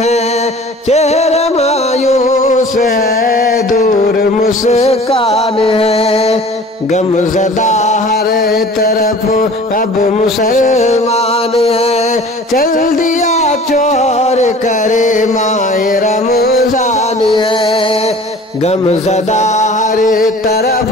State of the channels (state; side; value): normal; both; correlation 0.45